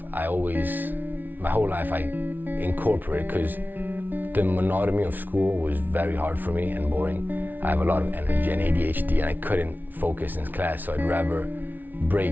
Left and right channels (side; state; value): left; late; 0.085 ms